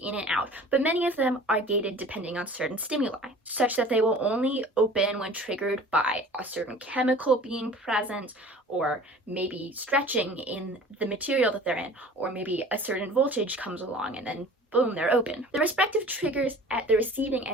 and out, but many of them are gated depending on certain stimuli, such that they will only open when triggered by a certain chemical being present, or maybe stretching in the material that they're in, or maybe a certain voltage comes along and then boom, they're open. The respective triggers at the receiving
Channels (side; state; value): both; normal; correlation 0.44